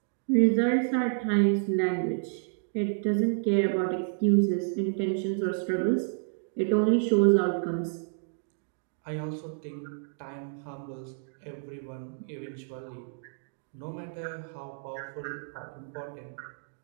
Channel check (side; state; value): left; silent; digital silence